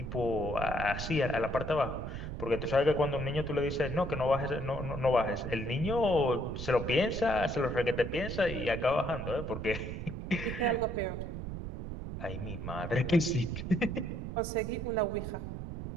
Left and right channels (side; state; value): right; noise; rumble, 6 dB below the sound